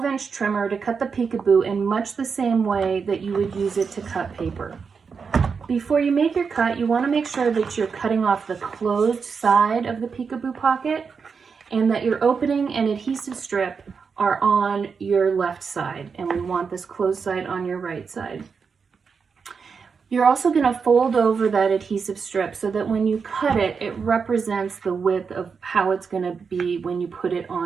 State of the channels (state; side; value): quieter; left; 5.6 dB